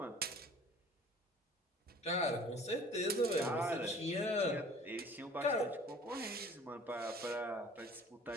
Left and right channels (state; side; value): normal; both; correlation 0.48